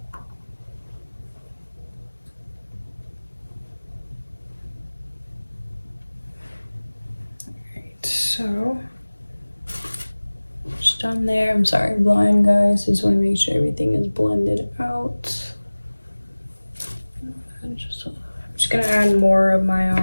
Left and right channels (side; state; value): both; inverted; correlation -1.00